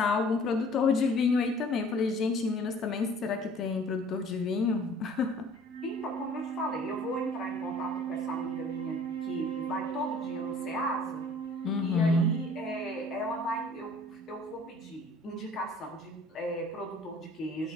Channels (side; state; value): both; normal; correlation 0.52